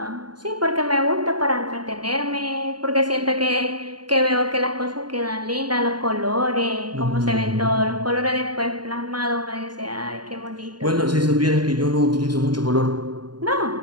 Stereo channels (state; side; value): late; left; 0.71 ms